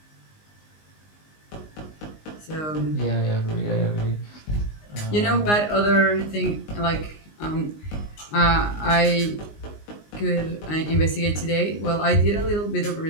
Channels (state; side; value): late; right; 19 ms